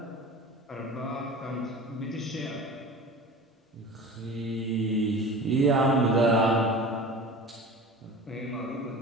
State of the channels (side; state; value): both; normal; correlation 0.36